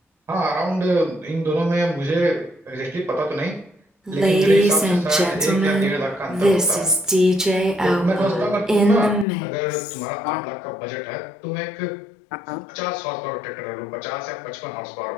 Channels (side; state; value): right; drops out; at 9.2 s